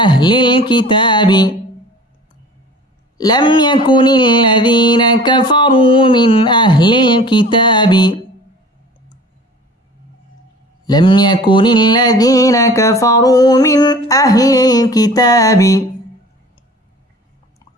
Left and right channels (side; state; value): both; normal; correlation 0.44